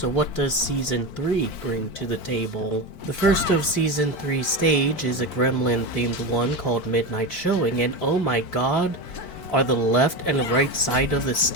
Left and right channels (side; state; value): right; late; 4.5 ms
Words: what does Season 3 bring to the table? The first of Season 3 stage is a Gremlin-themed one called Midnight Showing, and oh my god, are the left and right side of the